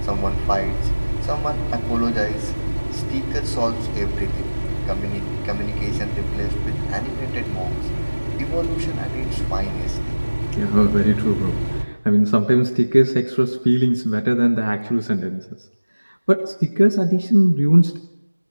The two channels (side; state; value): both; inverted; correlation -1.00